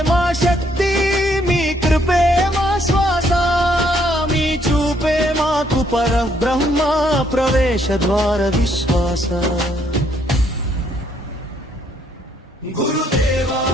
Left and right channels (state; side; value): normal; both; correlation 0.69